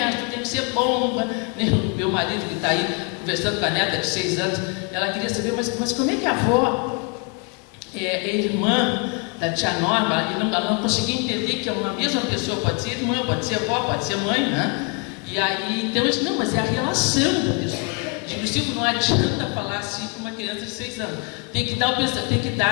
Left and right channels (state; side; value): quieter; right; 31.4 dB